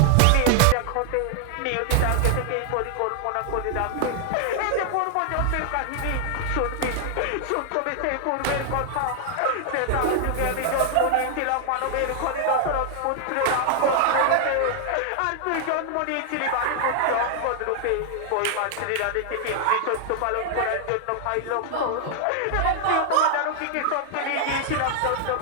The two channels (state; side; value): different; both; correlation 0.00